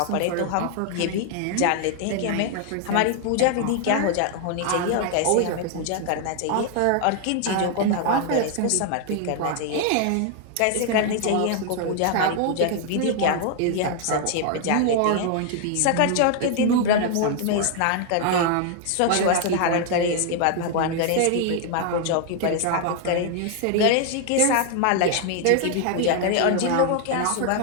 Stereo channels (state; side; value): different; both; correlation 0.00